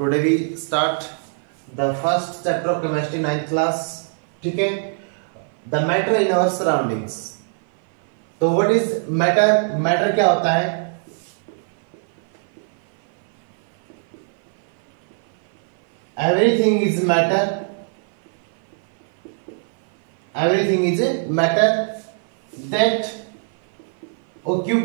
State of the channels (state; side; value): silent; left; 57 dB below the other